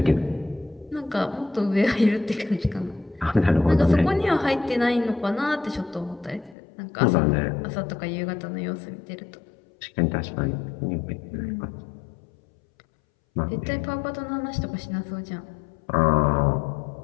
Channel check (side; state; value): right; drops out; at 6.6 s